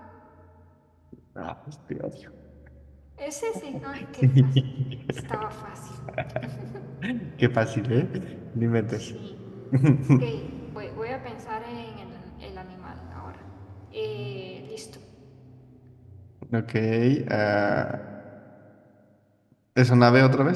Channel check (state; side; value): identical; both; correlation 1.00